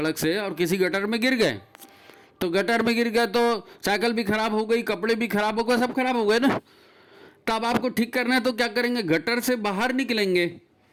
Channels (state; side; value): identical; both; correlation 1.00